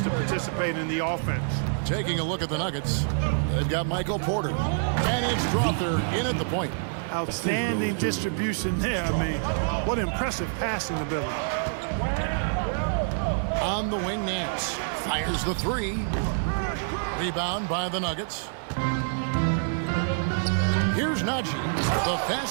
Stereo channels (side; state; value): left; silent; 60 dB below the other